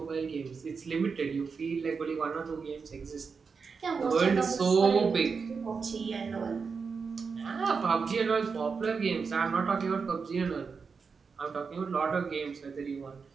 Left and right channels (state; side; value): quieter; left; 5.3 dB